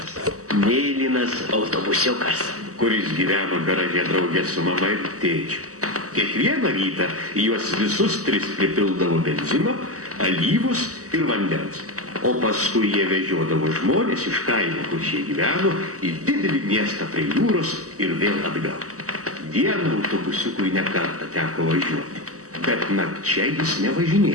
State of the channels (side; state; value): left; late; 0.66 ms